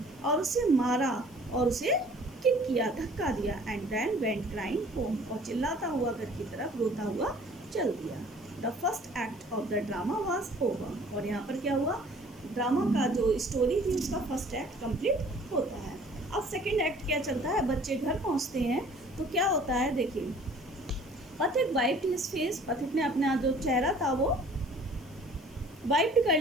और उसे मारा और उसे किक किया, धक्का दिया। And then went crying home, और चिल्लाता हुआ घर की तरफ रोता हुआ चल दिया। The first act of the drama was over, और यहाँ पर क्या हुआ, ड्रामा का जो स्टोरी थी उसका फर्स्ट एक्ट कंप्लीट होता है। अब सेकेंड एक्ट क्या चलता है, बच्चे घर पहुँचते हैं तो क्या होता है देखिए। पथिक वाइप्ड हिज फेस, पथिक ने अपना जो चेहरा था वो वाइप्ड कर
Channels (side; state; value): left; noise; hiss, 26 dB below the sound